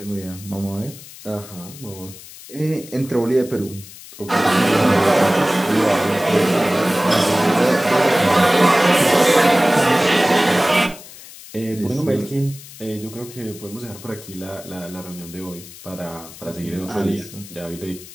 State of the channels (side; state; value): left; noise; hiss, 17 dB below the sound